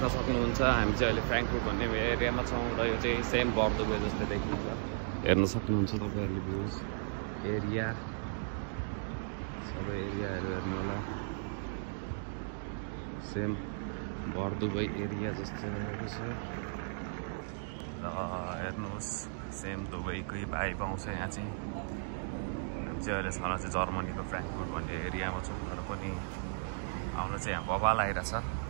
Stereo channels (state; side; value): silent; left; digital silence